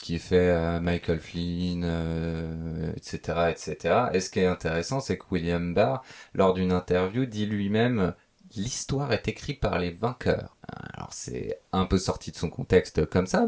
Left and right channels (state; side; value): identical; both; correlation 1.00